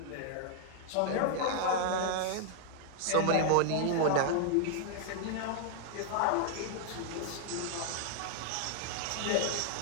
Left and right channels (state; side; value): different; both; correlation 0.00